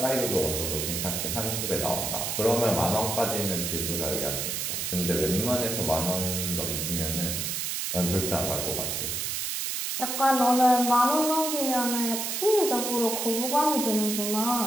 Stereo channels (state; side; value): noise; right; hiss, 2 dB below the sound